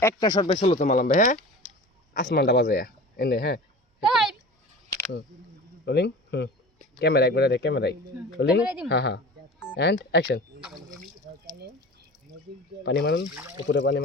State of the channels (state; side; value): normal; both; correlation 0.37